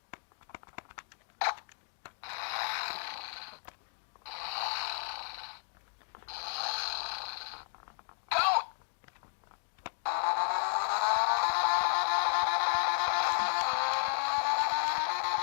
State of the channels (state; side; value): silent; right; digital silence